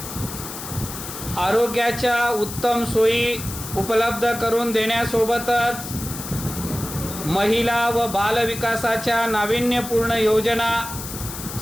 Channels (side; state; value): left; noise; hiss, 9 dB below the sound